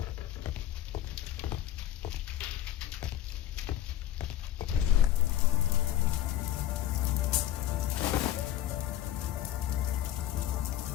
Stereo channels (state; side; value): quieter; right; 12.6 dB